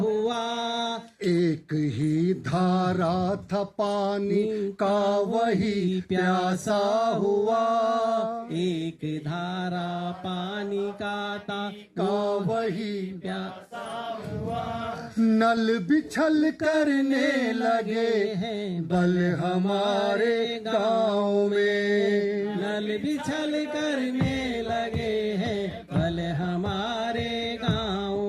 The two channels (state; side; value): identical; both; correlation 1.00